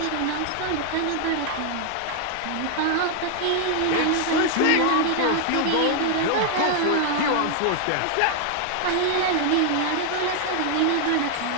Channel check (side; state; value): both; different; correlation 0.00